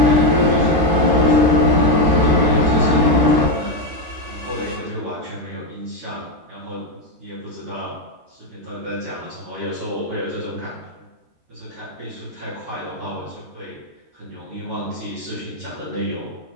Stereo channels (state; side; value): late; left; 13 ms